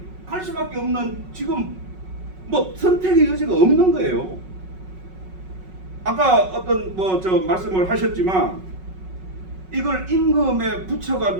할 수밖에 없는, 지금 선택의 여지가 없는 거예요. 아까 어떤 말씀을 하셨지만 이걸 임금에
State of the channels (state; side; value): late; left; 5.4 ms